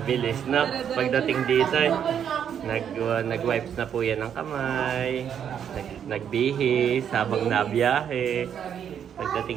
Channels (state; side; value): quieter; left; 8.6 dB